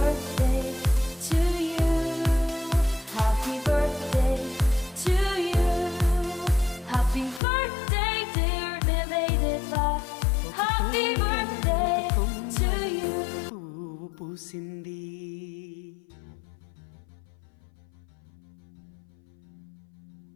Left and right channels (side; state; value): right; drops out; at 7.4 s